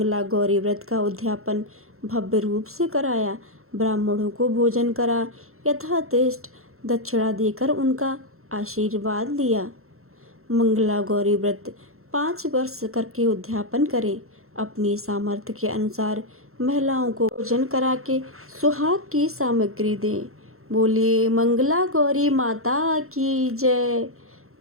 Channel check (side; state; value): left; late; 0.62 ms